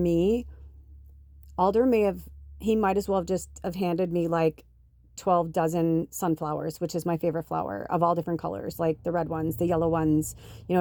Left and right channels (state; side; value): identical; both; correlation 1.00